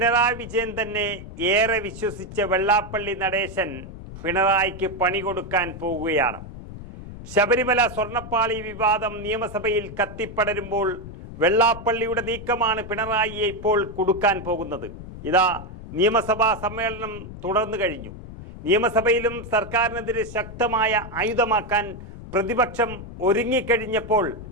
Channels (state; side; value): noise; left; rumble, 12 dB below the sound